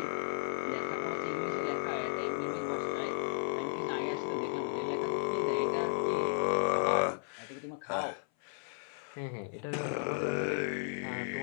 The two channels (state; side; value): silent; right; 55 dB below the other